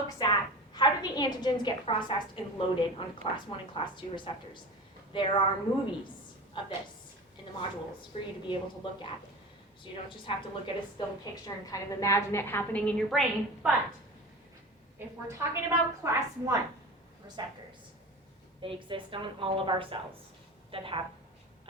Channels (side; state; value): both; normal; correlation 0.32